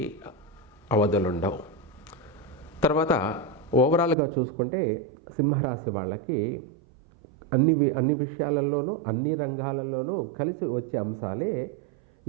అవధులుండవు. తర్వాత ఓవరాల్గా చూసుకుంటే సింహరాశి వాళ్ళకి అన్ని విషయాలలోనూ అన్ని రంగాలలోనూ కలిసి వచ్చే అంశాలే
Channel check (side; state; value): left; drops out; at 4.2 s